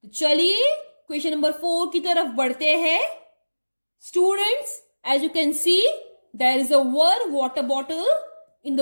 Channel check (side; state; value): both; inverted; correlation -1.00